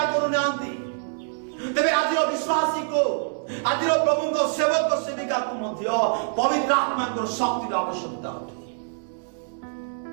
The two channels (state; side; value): silent; left; digital silence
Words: करू नांती तेबे आजिर विश्वासी को आजिर प्रभु को सेवक सेविका को मध्य पवित्र आत्मा को शक्ति आवश्यकता होती